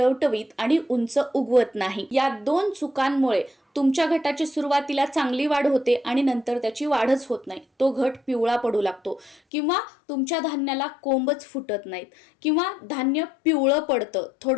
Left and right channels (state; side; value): drops out; right; at 9.4 s